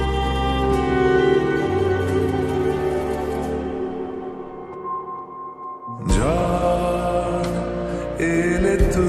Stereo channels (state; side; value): identical; both; correlation 1.00